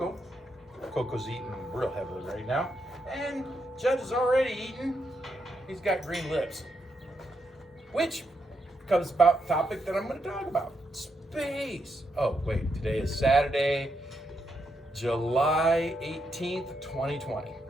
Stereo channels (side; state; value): both; normal; correlation 0.81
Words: Coco's eating real heavily right now. And Judd is already eating. He's got green lips. Which comes about the topic that I'm going to talk about. Space. Oh, wait. Today is Saturday, July 18th, 2020.